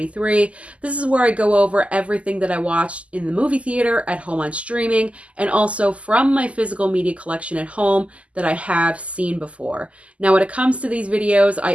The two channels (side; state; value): left; late; 0.063 ms